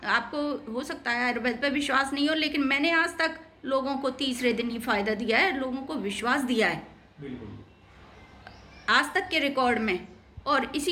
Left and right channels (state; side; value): identical; both; correlation 1.00